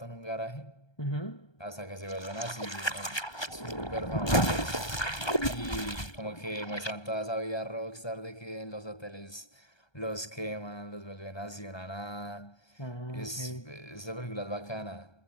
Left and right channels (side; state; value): right; late; 1.2 ms